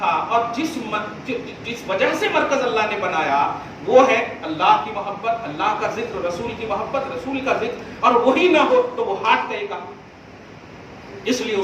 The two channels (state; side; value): identical; both; correlation 1.00